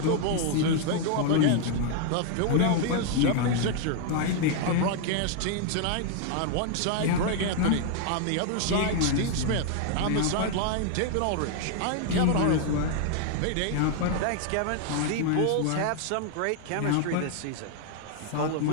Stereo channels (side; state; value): both; different; correlation 0.00